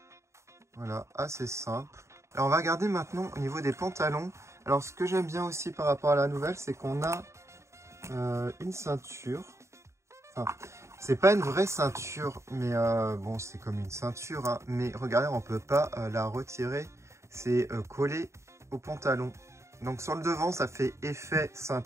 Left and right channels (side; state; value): left; late; 0.14 ms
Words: Voilà, assez simple. Alors on va regarder maintenant au niveau des pantalons. Alors ce que j'aime bien aussi par rapport à la nouvelle, c'est qu'on a une ceinture. Enfin, c'est pas une vraie ceinture, mais bon, c'est comme une ceinture. Hein, mais regardez, on peut pas la retirer. C'est collé au pantalon. Donc sur le devant, ça fait effet